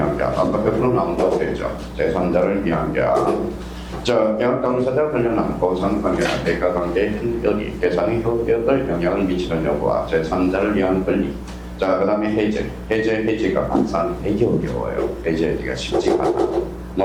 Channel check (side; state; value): both; identical; correlation 1.00